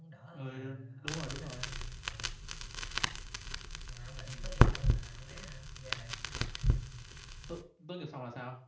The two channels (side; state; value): both; identical; correlation 1.00